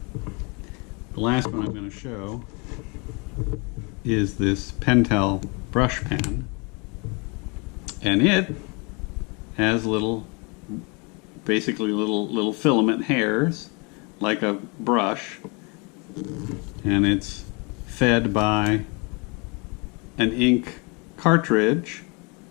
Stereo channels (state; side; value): quieter; right; 30.8 dB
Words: The last one I'm going to show is this Pentel brush pen, and it has basically little filament hairs like a brush, and it's fed by an ink cartridge